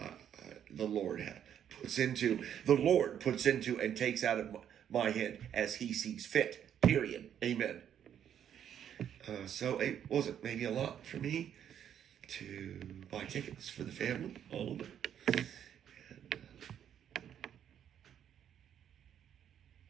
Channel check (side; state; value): left; quieter; 9.4 dB